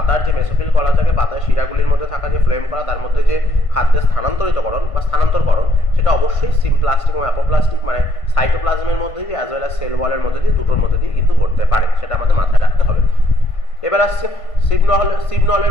যে মেসোফিল কলা থাকে, পাতার শিরাগুলির মধ্যে থাকা যে ফ্লোয়েম কলা তার মধ্যে যে খাদ্যের স্থানান্তরিতকরণ বা স্থানান্তরকরণ সেটা অবশ্যই সিমপ্লাস্টিক এবং অ্যাপোপ্লাস্টিক মানে সাইটোপ্লাজমের মধ্যে দিয়ে অ্যাজ ওয়েল অ্যাজ সেল ওয়ালের মধ্যে দিয়ে দুটোর মধ্যে দিয়ে কিন্তু ঘটতে পারে, সেটা আমাদের মাথায় রাখতে হবে। এবার আসছে সিবনলের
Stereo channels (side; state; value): right; late; 1.5 ms